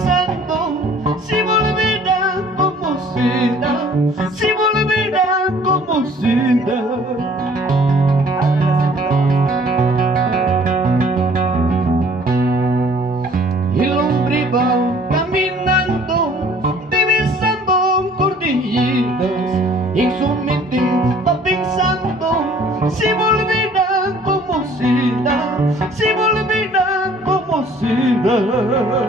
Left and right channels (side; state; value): both; normal; correlation 0.54